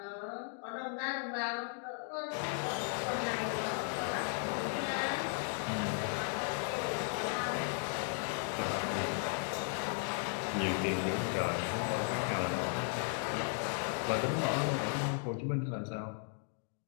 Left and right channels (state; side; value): silent; right; 54 dB below the other